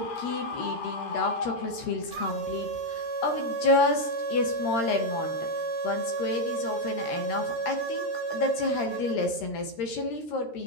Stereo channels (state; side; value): late; right; 13 ms